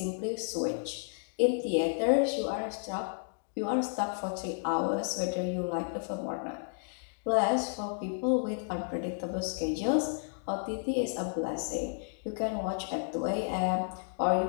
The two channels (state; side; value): silent; right; digital silence